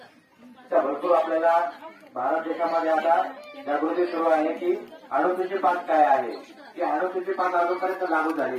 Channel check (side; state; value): both; identical; correlation 1.00